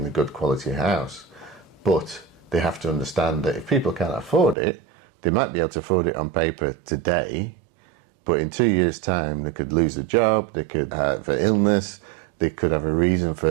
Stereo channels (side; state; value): left; drops out; at 4.5 s